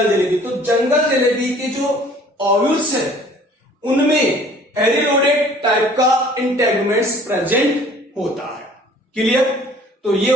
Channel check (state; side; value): normal; both; correlation 0.53